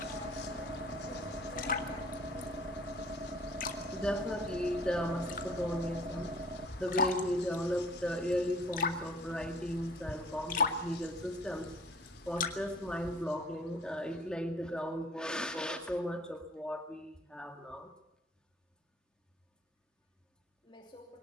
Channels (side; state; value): both; normal; correlation 0.50